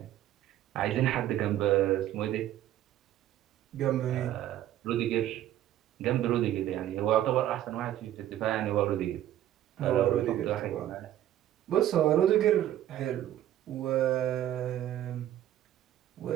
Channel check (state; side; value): quieter; left; 12.5 dB